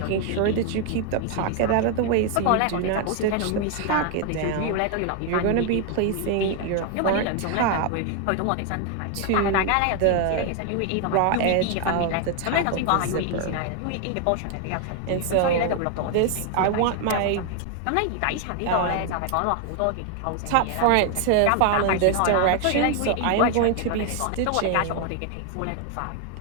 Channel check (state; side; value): different; both; correlation 0.01